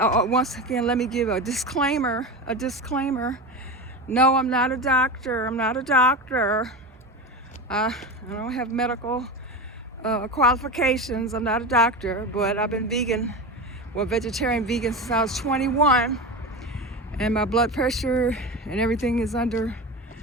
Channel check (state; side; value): normal; both; correlation 0.24